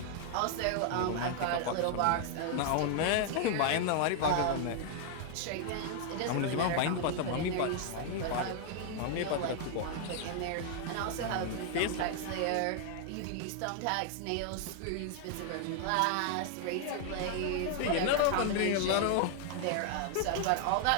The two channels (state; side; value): different; both; correlation 0.00